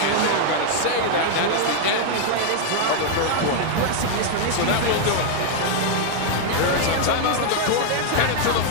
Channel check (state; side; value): different; both; correlation 0.00